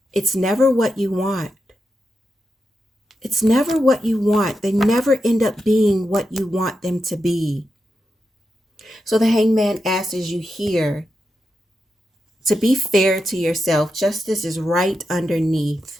it's never what you want. It's never what you want. They never end up being what you want them to be. So the hangman asks you here to be fair to yourself. Justice is right underneath.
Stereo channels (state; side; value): normal; both; correlation 0.87